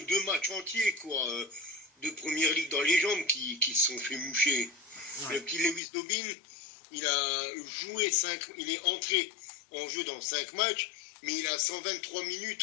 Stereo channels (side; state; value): right; drops out; at 5.8 s